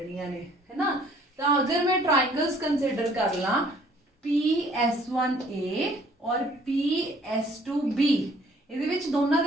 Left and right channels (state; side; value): normal; both; correlation 0.58